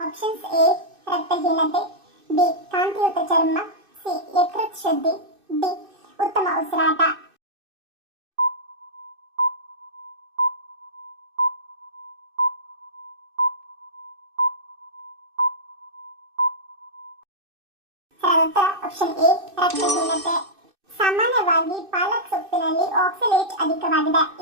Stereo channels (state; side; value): late; left; 2.6 ms